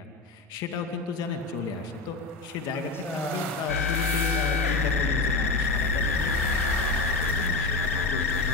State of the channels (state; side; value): quieter; right; 3.7 dB